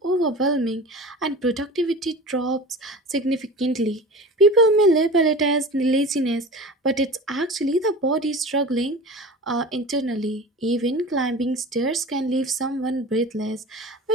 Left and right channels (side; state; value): both; normal; correlation 0.35